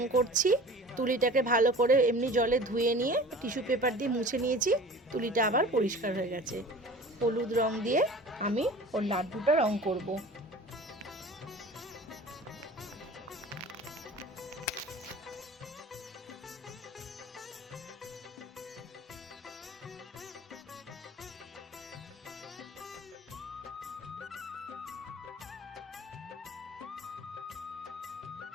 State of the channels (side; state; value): both; normal; correlation 0.41